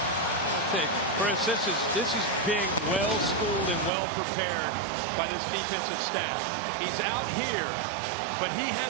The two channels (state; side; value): drops out; left; at 3.9 s